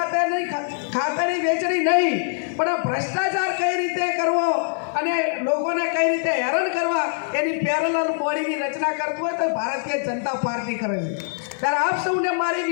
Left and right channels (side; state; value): right; silent; digital silence